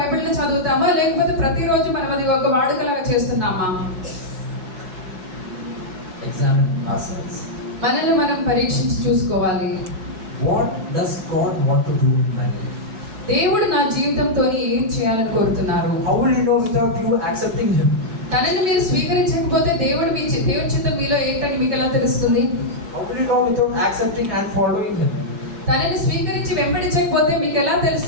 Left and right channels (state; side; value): late; left; 4.7 ms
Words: చదువుతామా లేకపోతే ప్రతిరోజు మనం అది ఒక వాడుకలాగా చేస్తున్నామా? Examine ourselves. మనల్ని మనం పరీక్షించి చూసుకోవాలి. What does God want to do in my life? దేవుడు నా జీవితంతో ఏం చేయాలని కోరుతున్నారు? How will you know without you accepting Him? తనని మీరు స్వీకరించకపోతే దేవుడి చిత్తం మీలో ఏంటని మీకు ఎలా తెలుస్తుంది? How will you know without accepting and following Him? తనని స్వీకరించి వెంబడించకపోతే మీకు ఎలా